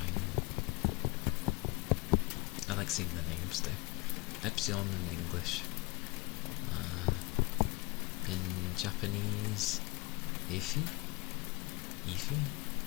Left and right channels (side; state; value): right; quieter; 24.2 dB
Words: I like seeing the names though. Epsilon in English. In Japanese, Ify? Ify?